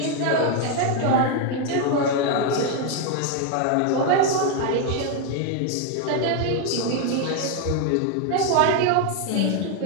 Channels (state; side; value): different; both; correlation 0.01